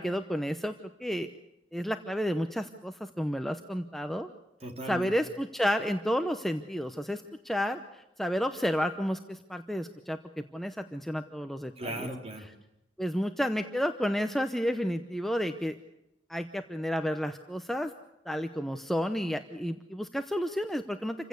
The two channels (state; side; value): normal; both; correlation 0.91